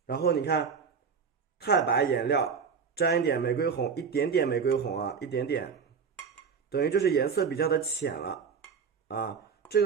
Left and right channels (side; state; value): left; quieter; 6.0 dB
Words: 然后你看太白颜料沾一点玫瑰红，一点点玫瑰红啊，一点点，等于就是颜色比较的浅了啊。这